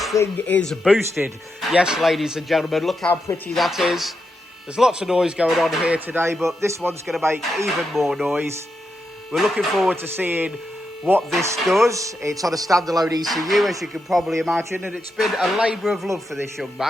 thing is boosted. Yes, ladies and gentlemen, look how pretty that is. There's lots of noise going on here today, but this one's going to make even more noise. We're looking forward to seeing what this does. It's on a standalone ECU, as you can probably imagine, and it's been a labour of love for this young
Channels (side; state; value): both; normal; correlation 0.85